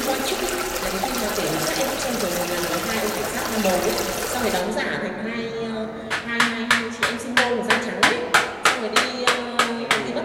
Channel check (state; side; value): identical; both; correlation 1.00